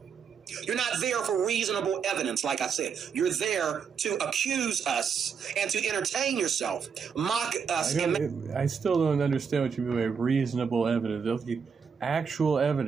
You're not there for reasonable evidence, like I said. You're there to accuse us and to entertain yourself, mock us. I still don't understand what you mean by reasonable evidence. Actual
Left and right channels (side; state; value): left; quieter; 6.4 dB